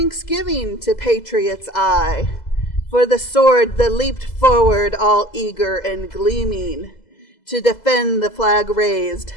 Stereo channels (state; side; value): late; right; 2.0 ms